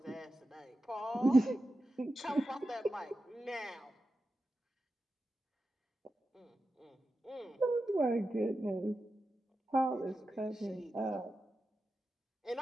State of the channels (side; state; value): both; normal; correlation 0.91